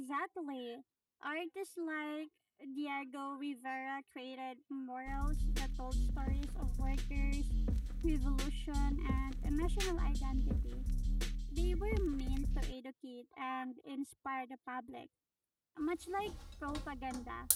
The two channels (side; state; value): both; identical; correlation 1.00